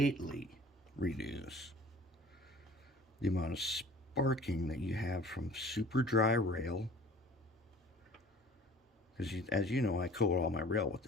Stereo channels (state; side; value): normal; both; correlation 0.47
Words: reduce the amount of sparking that you have from super dry rail. Because as you know, I coat all my rail with